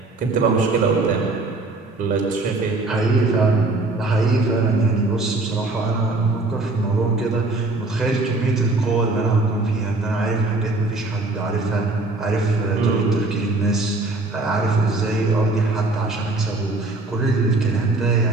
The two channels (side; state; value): left; quieter; 3.1 dB